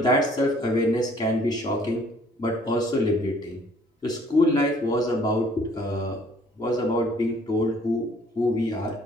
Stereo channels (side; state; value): both; normal; correlation 0.59